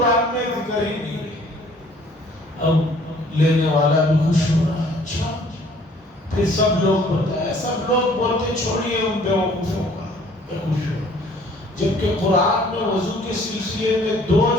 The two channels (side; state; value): both; normal; correlation 0.56